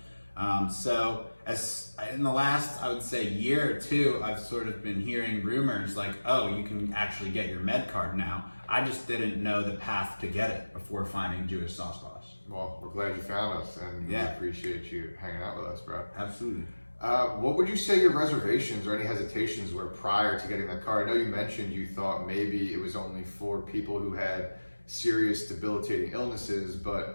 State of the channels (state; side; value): inverted; both; correlation -1.00